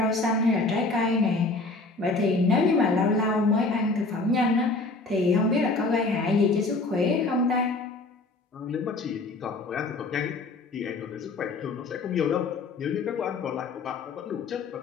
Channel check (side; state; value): right; quieter; 3.4 dB